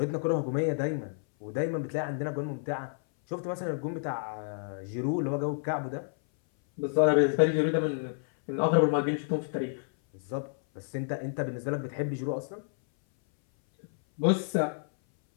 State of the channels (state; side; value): silent; right; 58 dB below the other